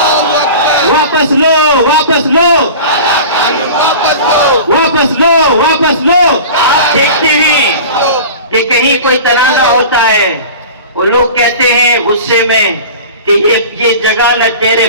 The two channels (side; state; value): both; inverted; correlation -0.37